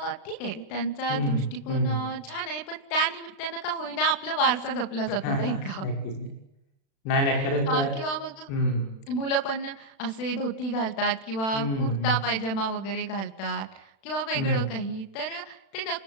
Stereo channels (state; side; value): late; right; 36 ms